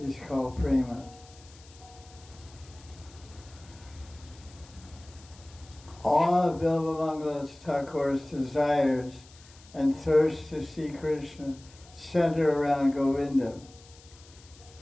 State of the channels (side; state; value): left; noise; hiss, 24 dB below the sound